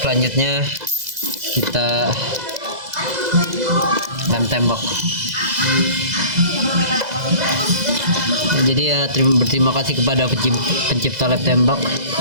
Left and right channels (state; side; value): late; left; 2.0 ms